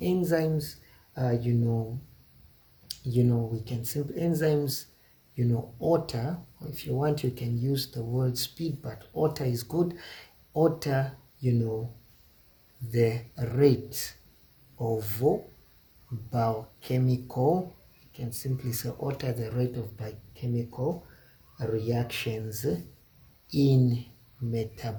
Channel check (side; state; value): both; identical; correlation 1.00